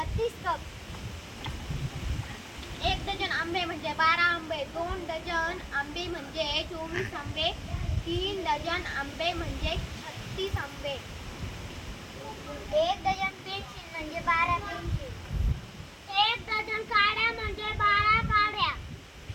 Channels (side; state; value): both; identical; correlation 1.00